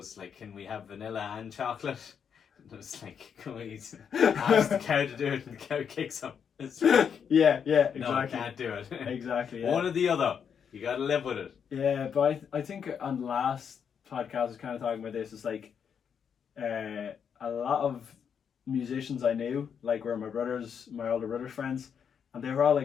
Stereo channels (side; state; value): right; quieter; 7.3 dB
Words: like, "Can we have vanilla and chocolate?" And it's like, "Can we ask the cow to do it?" And the cow kicks him. It's like, yeah, exactly. no, I can't do it. Exactly. Yeah. One or the other. You gotta live with it. Yeah, but I think on the last podcast I was kind of talking about this. It's like a lot of musicians I knew, like were my older brother's friends, and they were all